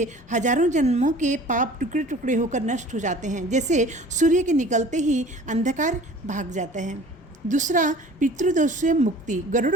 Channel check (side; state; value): both; normal; correlation 0.46